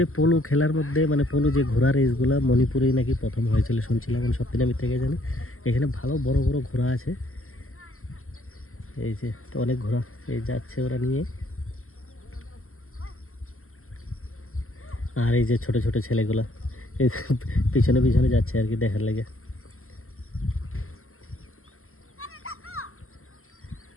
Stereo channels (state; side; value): late; right; 0.62 ms